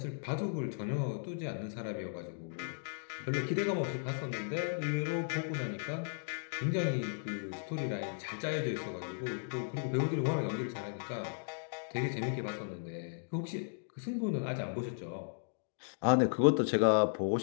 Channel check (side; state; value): right; silent; digital silence